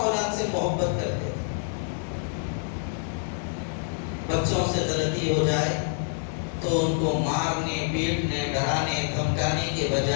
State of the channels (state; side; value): silent; right; 60 dB below the other